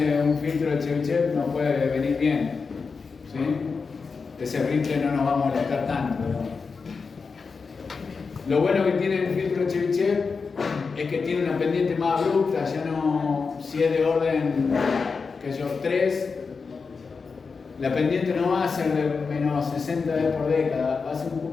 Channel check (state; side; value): quieter; right; 4.9 dB